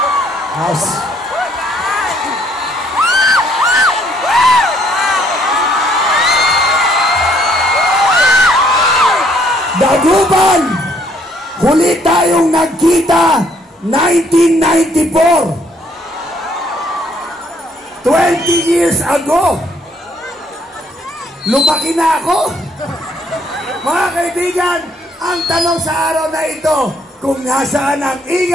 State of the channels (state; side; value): normal; both; correlation 0.66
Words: House. Dagupan, huli tayong nagkita 1994. 20 years ago, lumaki na ako. Mga kaibigan, ang tanong sa araw na ito, kung nasaan ang